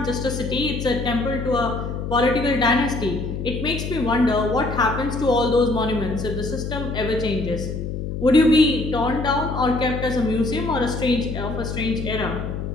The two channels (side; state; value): left; noise; hum, 5 dB below the sound